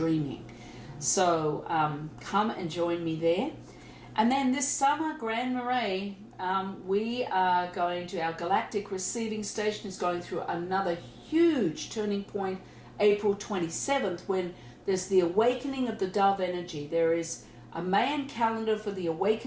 So come and join me there. And then this summer, Grand Marais, we are going to, our galactic receiving station is going through another huge turning point, April 27th, when there's the awakening of the dove energy. There is a Mayan calendar for the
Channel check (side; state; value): both; identical; correlation 1.00